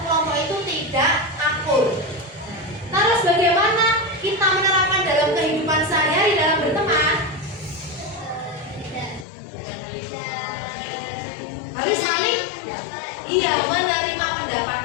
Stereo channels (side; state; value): right; drops out; at 9.2 s